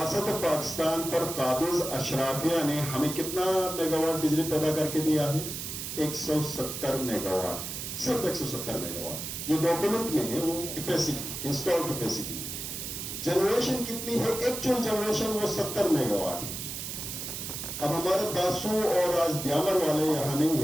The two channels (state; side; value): noise; right; hiss, 6 dB below the sound